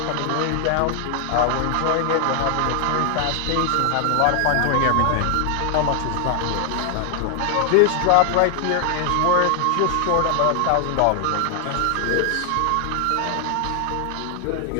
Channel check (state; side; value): different; both; correlation 0.00